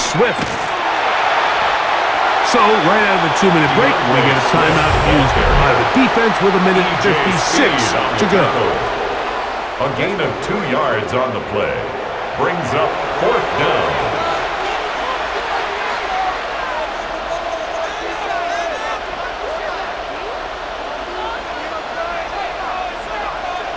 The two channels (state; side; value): identical; both; correlation 1.00